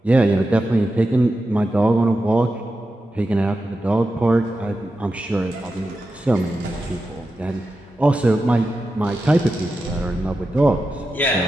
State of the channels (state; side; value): normal; both; correlation 0.90